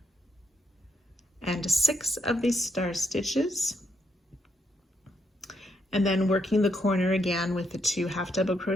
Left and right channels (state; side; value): normal; both; correlation 0.78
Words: of these star stitches, and then working the corner again with the 2 half double